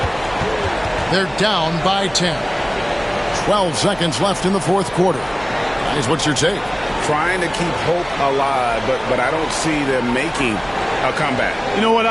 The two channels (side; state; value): right; noise; hum, 21 dB below the sound